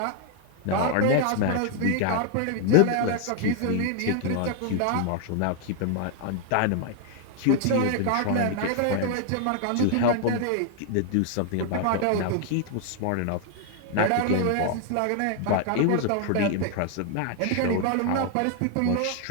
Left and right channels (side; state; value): both; different; correlation 0.00